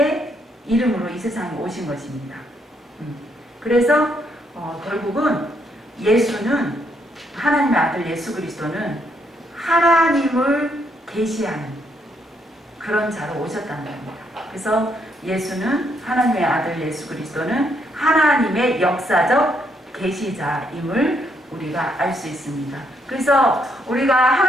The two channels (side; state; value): both; normal; correlation 0.74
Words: 이름으로 이 세상에 오신 것입니다. 그래서 결국은 예수는, 하나님의 아들 예수 그리스도는 하나님을 계시하는 그런 자로 오셨다는 겁니다. 그래서 예수는, 하나님의 아들 예수 그리스도는 하나님의 역사적 계시자임을 우리가 알 수 있습니다. 그래서 우리가